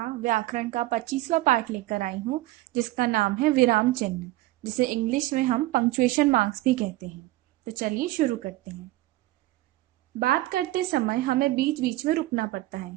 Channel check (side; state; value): left; quieter; 17.9 dB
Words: व्याकरण का 25वां पाठ लेकर आई हूँ, जिसका नाम है विराम चिन्ह, जिसे इंग्लिश में हम पंक्चुएशन मार्क्स भी कहते हैं। तो चलिए शुरू करते हैं। बात करते समय हमें बीच बीच में रुकना पड़ता